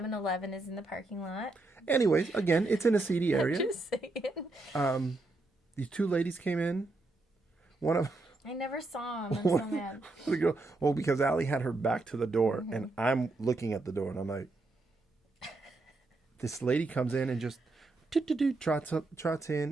is in the parking lot. Anyways, again, it's in a seedy area. Just saying. These 2 ladies came in. One of I never saw him. I'm so mad. the girl. Well, because Allie had her back to the door, and I'm looking at the door, and I'm like, this lady comes in and just trots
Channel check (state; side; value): quieter; left; 3.1 dB